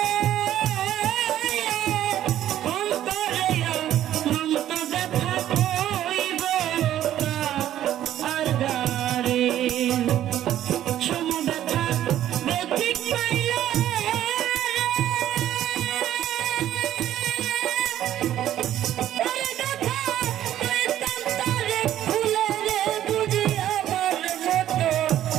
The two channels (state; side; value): quieter; left; 12.1 dB